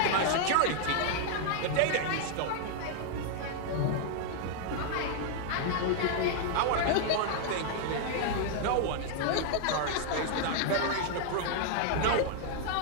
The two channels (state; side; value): different; both; correlation 0.00